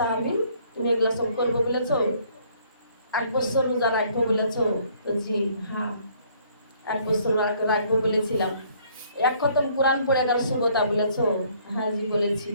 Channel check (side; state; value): both; inverted; correlation -0.62